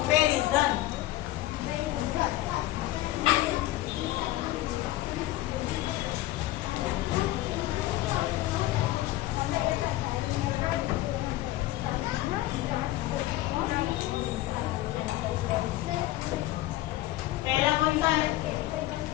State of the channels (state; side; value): quieter; right; 16.2 dB